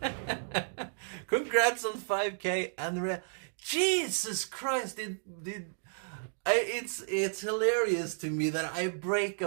Congrats on 5K, and Jesus Christ! It's hilarious to me that I break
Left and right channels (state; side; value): silent; left; digital silence